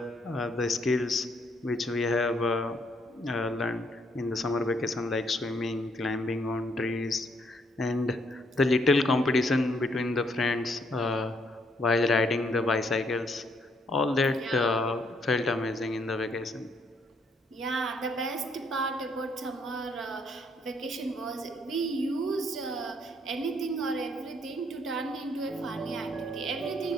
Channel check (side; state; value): both; normal; correlation 0.70